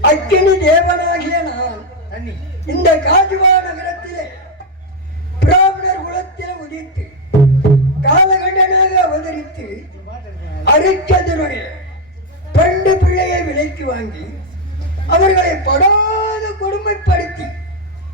அக்கினி தேவனாகிய நான் இந்த காஜுவா நகரத்திலே பிராமணர் குலத்தில் உதித்து காலகண்டனாக அவதரித்து அரிச்சந்திரனுடைய 2 பிள்ளையை விலைக்கு வாங்கி அவர்களை படாத கொடுமைப்படுத்தி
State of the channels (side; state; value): both; normal; correlation 0.05